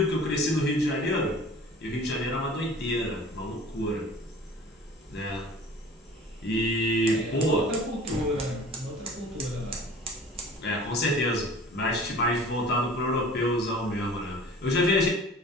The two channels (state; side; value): normal; both; correlation 0.44